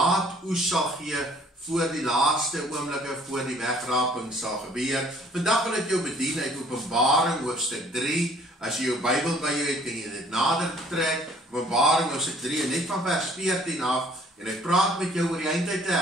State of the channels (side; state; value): both; normal; correlation 0.57